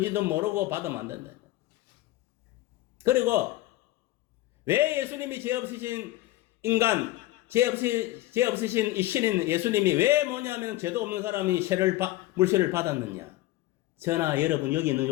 모르고 받으면 안 된다. 그리고 왜 예수님이 죄 없으신 인간, 죄 없으신 이 신인 예수님이 왜 뭐냐면 죄도 없는 사람이 물세례를 받았느냐? 저나 여러분 여기 있는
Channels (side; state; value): right; quieter; 16.7 dB